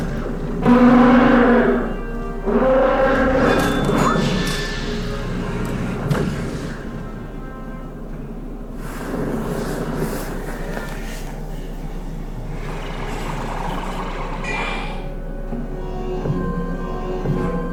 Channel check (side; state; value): both; identical; correlation 1.00